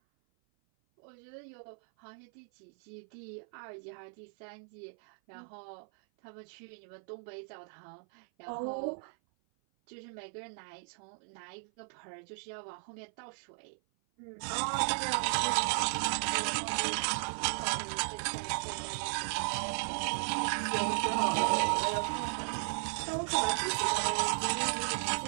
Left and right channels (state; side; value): silent; left; 54 dB below the other